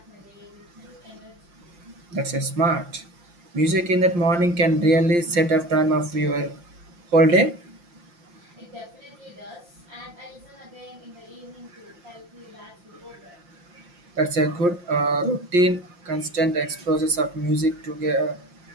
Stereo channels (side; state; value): left; late; 5.7 ms